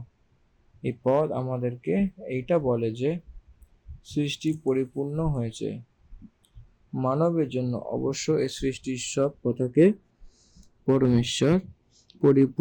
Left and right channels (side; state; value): both; identical; correlation 1.00